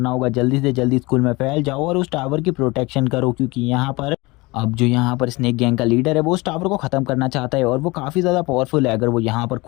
होगा। जल्दी से जल्दी स्कूल में फैल जाओ और उस टावर की प्रोटेक्शन करो, क्योंकि यहाँ पर अब जो यहाँ पर स्नेक गैंग का लीडर है वो उस टावर को ख़त्म करना चाहता है और वो काफ़ी ज़्यादा पावरफुल है। अगर वो यहाँ पर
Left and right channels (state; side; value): quieter; right; 23.3 dB